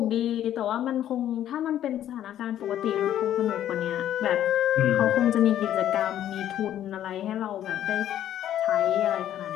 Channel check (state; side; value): quieter; right; 11.4 dB